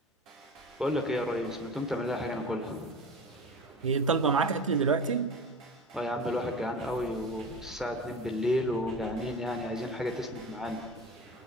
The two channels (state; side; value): normal; both; correlation 0.32